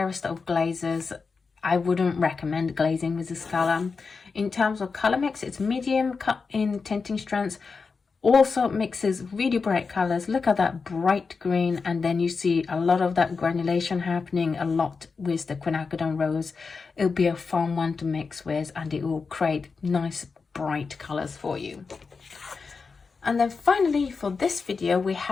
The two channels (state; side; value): quieter; right; 4.8 dB